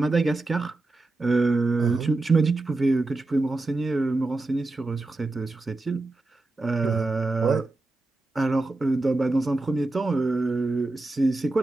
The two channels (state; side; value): quieter; left; 3.1 dB